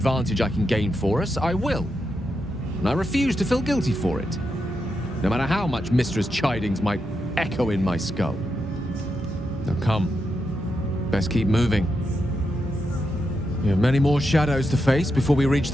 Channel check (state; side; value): normal; both; correlation 0.85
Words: I can gain for us, I will. And I refuse to feel guilty for it. No matter how much Mistra's chidings might echo in my skull. Now come. Best keep moving. We have many more shadows to face before we reach